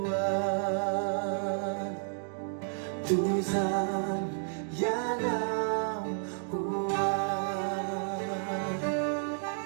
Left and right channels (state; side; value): silent; left; 57 dB below the other